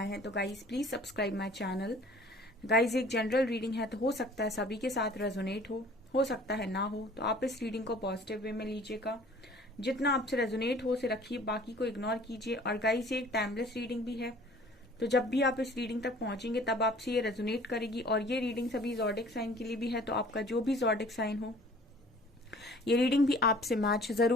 हैं तो guys please subscribe my channel. Guys, एक जनरल रीडिंग है तो हो सकता है सभी के साथ रेजोनेट हो सकता है ना हो, तो आप इस रीडिंग को पॉजिटिव वे में लीजिएगा। जितना आपसे रेजोनेट हो उसे रखिए, बाकी को इग्नोर कीजिए। और गाइस, ये एक टाइमलेस रीडिंग भी है, तो जब भी आप इस रीडिंग तक पहुंचेंगे तब आपसे ये रेजोनेट करेगी। और ये रीडिंग सभी जॉडिक साइन के लिए भी है, तो आपका जो भी जॉडिक साइन हो ये रीडिंग भी आपसे मैच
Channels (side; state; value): both; normal; correlation 0.51